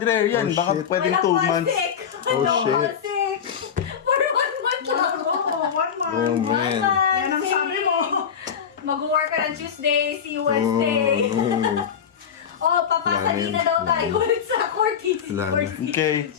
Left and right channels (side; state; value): right; quieter; 7.7 dB